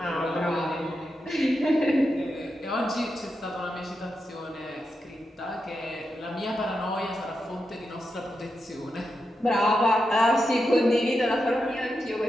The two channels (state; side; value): normal; both; correlation 0.87